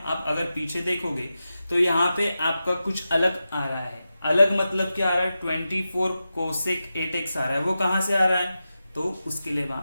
आप अगर पीछे देखोगे तो यहाँ पे आपका कुछ अलग आ रहा है। अलग मतलब क्या आ रहा है, 24 कोसेक 8x आ रहा है, वो कहाँ से आ रहा है, तो उसके लिए मैं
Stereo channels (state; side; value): inverted; both; correlation -0.91